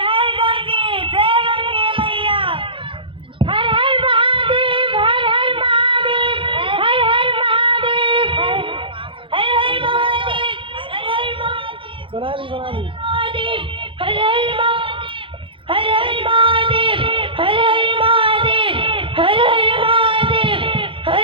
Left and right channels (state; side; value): late; left; 0.25 ms